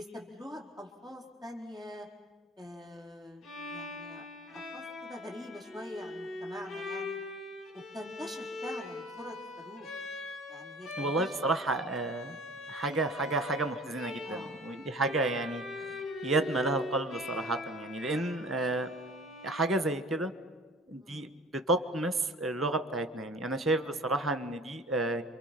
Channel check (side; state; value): both; normal; correlation 0.45